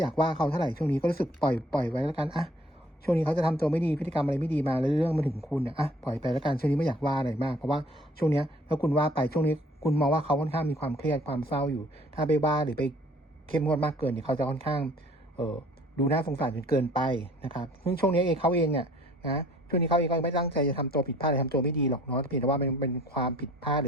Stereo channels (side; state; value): both; normal; correlation 0.55